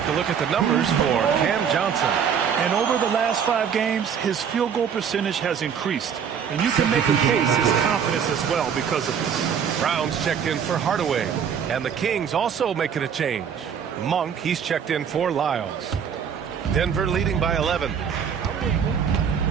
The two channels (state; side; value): quieter; left; 7.6 dB